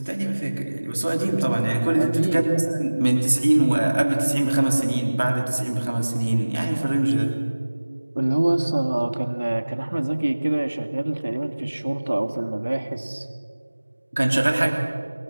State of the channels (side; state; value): both; inverted; correlation -1.00